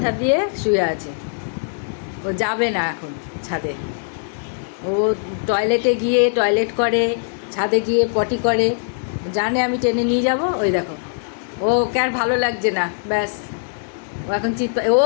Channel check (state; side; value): silent; right; digital silence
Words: দিয়ে শুয়ে আছে। ও যাবে না এখন ছাদে। ও টয়লেটে গিয়ে টয়লেট করে, ছাদে গিয়ে পটি করে, জানে আমি টেনে নিয়ে যাব। ওই দেখো, ওকে আর ভালো লাগছে না, ব্যাস ও এখন ও